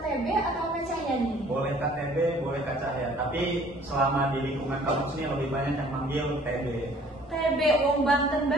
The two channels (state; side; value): normal; both; correlation 0.55